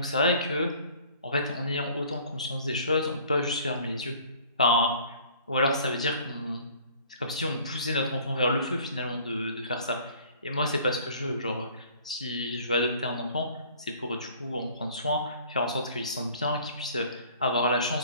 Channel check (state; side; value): inverted; both; correlation -0.52